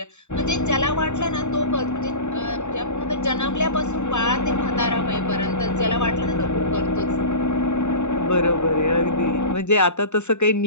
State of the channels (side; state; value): right; late; 0.83 ms